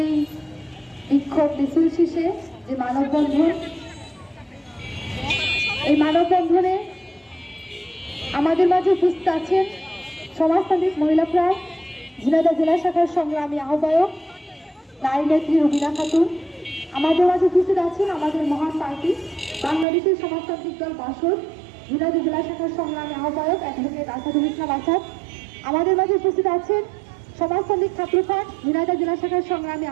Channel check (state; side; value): drops out; left; at 19.9 s